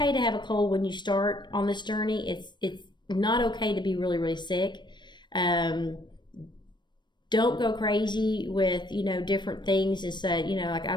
to have a cold when you start on this journey. It's not okay to be really, really sick. Don't go crazy with, different things and say, like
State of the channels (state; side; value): late; right; 0.22 ms